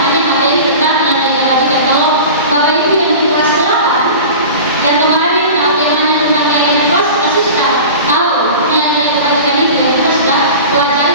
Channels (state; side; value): inverted; both; correlation -0.35